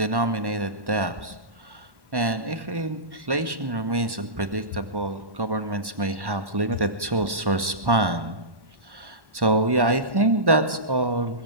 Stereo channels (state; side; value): late; left; 1.1 ms